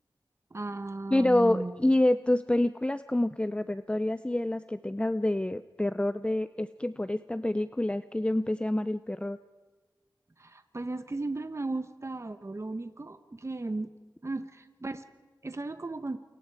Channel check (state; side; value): normal; both; correlation 0.98